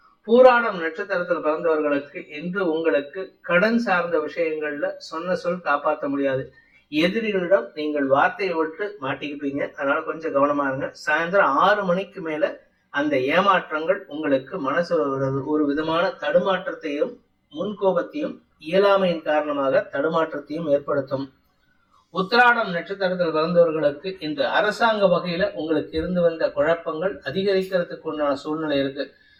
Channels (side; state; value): both; identical; correlation 1.00